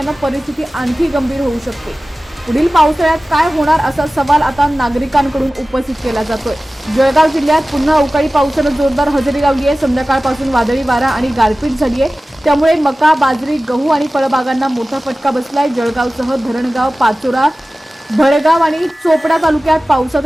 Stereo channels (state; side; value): normal; both; correlation 0.97